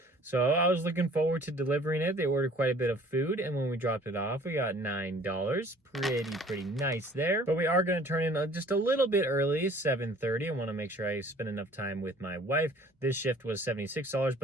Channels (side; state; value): both; normal; correlation 0.52